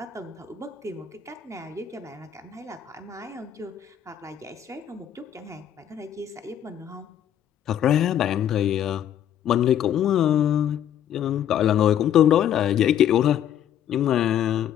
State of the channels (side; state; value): right; quieter; 10.2 dB